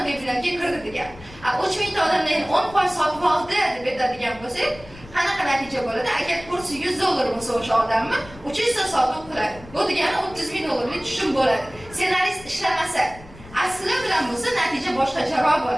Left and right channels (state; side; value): noise; left; rumble, 20 dB below the sound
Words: webinarga kirdi degani. 3 mingta odamdan 10% sotib oldi deb aytadigan bo'lsak, qanaqa natija bo'ladi? Agar kursi $100 bo'lsa o'sha odamni 300 ta sotib qiladi. Bu degani 30 ming dollarlik tushum bo'ladi. Ssenarist ishlamasa, asli bilan bo'lsa natija boshqacharoq